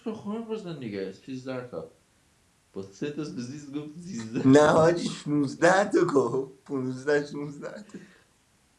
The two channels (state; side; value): identical; both; correlation 1.00